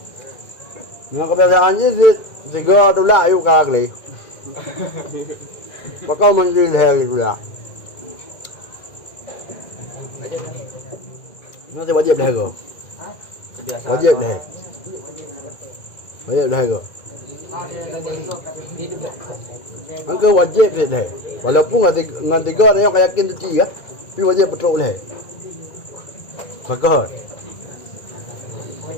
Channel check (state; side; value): late; right; 2.0 ms